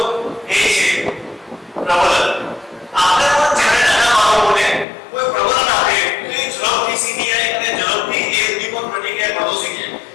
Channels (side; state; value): right; drops out; at 4.9 s